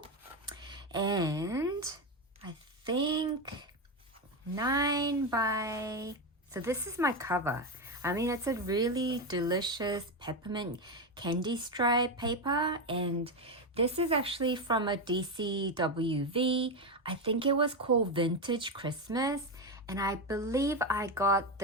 and I think 9 by... So this is my cover. I mean, it's a really delicious peppermint candy stripe paper, and this is actually from a DCWV. I think it was called Vintage Christmas, and I believe I got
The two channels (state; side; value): normal; both; correlation 0.11